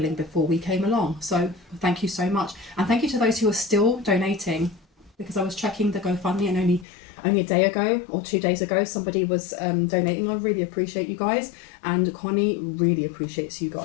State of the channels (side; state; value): right; drops out; at 6.9 s